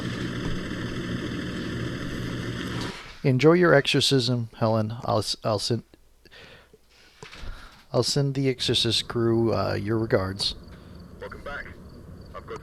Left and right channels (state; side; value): identical; both; correlation 1.00